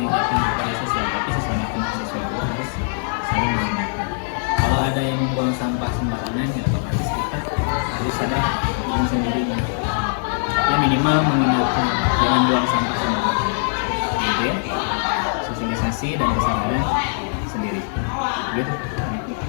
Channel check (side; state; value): right; silent; 65 dB below the other